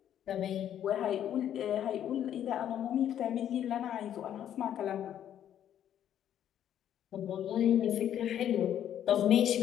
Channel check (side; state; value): right; quieter; 10.4 dB